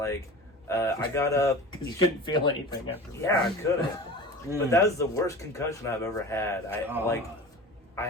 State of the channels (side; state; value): both; normal; correlation 0.36